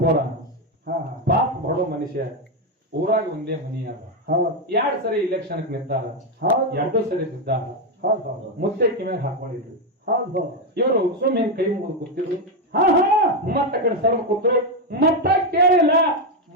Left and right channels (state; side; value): normal; both; correlation 0.06